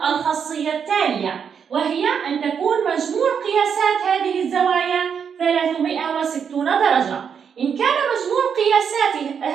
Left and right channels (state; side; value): quieter; left; 7.1 dB